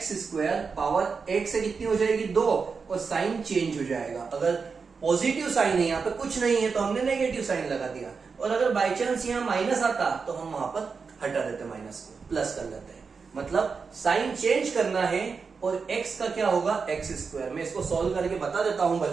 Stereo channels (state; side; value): quieter; left; 5.2 dB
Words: पावर एक से कितनी हो जाएगी 2, और साइन चेंज हो जाएगा। अगर पॉजिटिव साइन है यहाँ पे कुछ नहीं है तो हमने नेगेटिव साइन लगा दिया, और अगर बाई चांस यहाँ माइनस आता तो हम वहां पर हटा देते माइनस को, प्लस कर लेते हैं। मतलब साइन चेंज करना है और x का क्या होगा x²। मैं इसको सॉल्व करके बता देता हूं